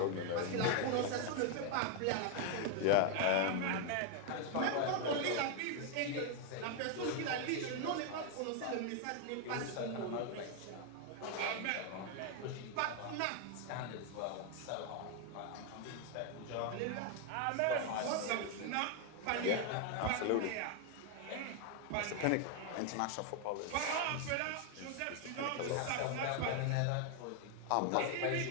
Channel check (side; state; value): both; different; correlation 0.00